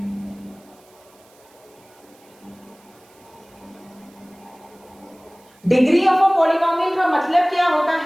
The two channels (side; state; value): right; noise; hiss, 29 dB below the sound